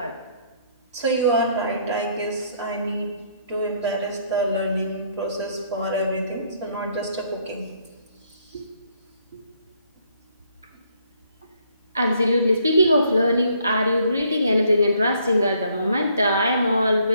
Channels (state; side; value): inverted; both; correlation -0.67